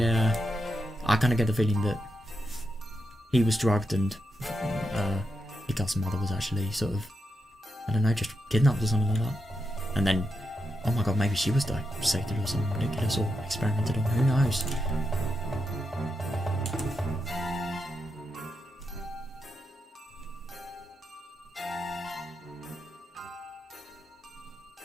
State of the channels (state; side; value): normal; both; correlation 0.86